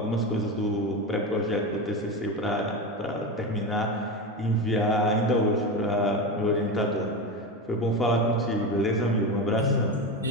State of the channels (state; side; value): normal; both; correlation 0.20